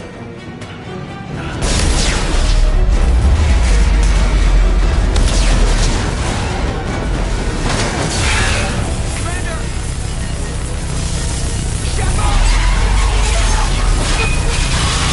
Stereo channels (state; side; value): identical; both; correlation 1.00